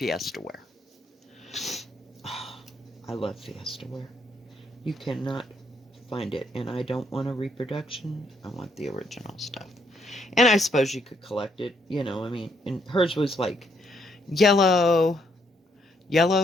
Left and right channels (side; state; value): both; normal; correlation 0.72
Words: ware. Oh, I love Fiesta ware. You cannot find it, and I don't want a reproduction. I want the original stuff. And I suppose you could collect it, I mean, and hers was like yellow,